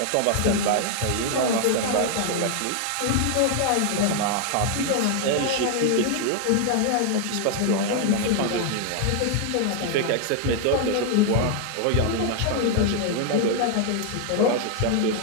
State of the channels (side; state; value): both; different; correlation 0.00